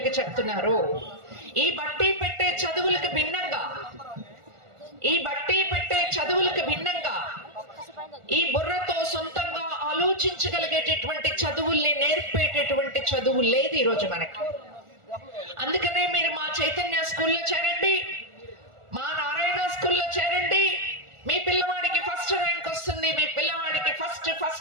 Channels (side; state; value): left; late; 1.4 ms